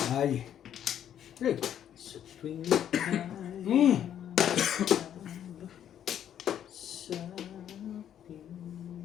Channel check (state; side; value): quieter; right; 10.0 dB